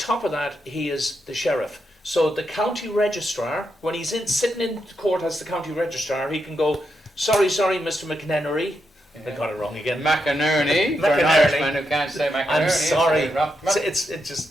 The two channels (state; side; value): normal; both; correlation 0.83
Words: of that, he is the sheriff. So the county registrar, when he's sitting in court as the county registrar, he can go, sorry, Mr. McNennery. I got it wrong again. McInerney. For an Irishman who can't say McInerney. I'm sorry. It